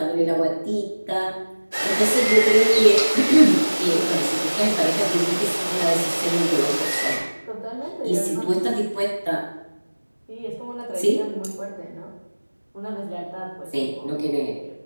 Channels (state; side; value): inverted; both; correlation -1.00